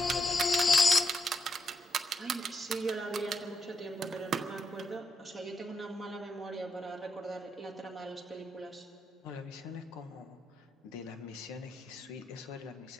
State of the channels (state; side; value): normal; both; correlation 0.80